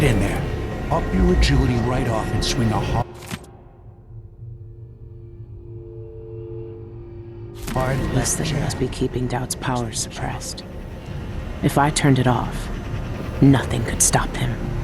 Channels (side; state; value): both; identical; correlation 1.00